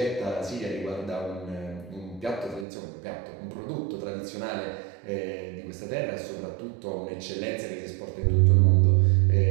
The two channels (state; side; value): drops out; left; at 2.7 s